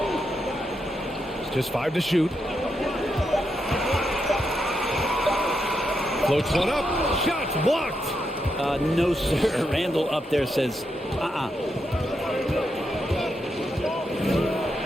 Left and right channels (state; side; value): normal; both; correlation 0.83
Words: Just 5 to shoot. Floats one up. Shots blocked. No, sir. Randall up there says,